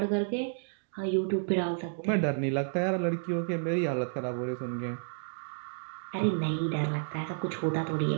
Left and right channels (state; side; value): silent; left; digital silence